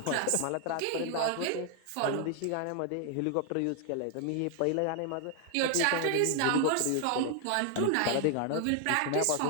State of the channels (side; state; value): both; different; correlation 0.00